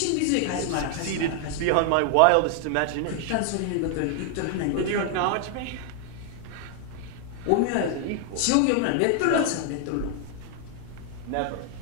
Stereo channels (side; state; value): both; different; correlation 0.00